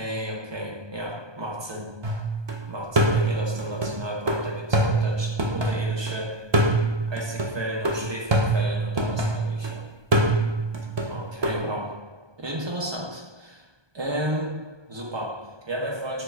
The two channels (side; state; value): left; late; 1.2 ms